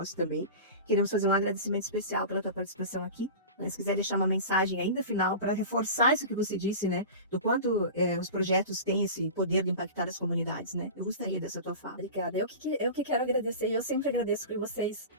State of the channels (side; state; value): both; inverted; correlation -0.31